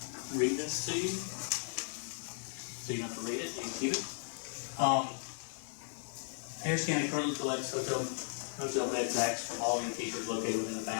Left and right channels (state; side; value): silent; right; digital silence